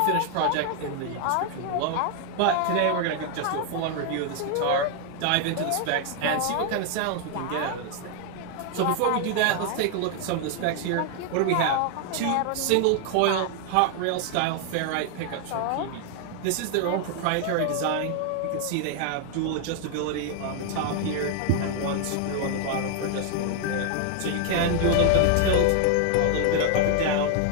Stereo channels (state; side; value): different; both; correlation 0.00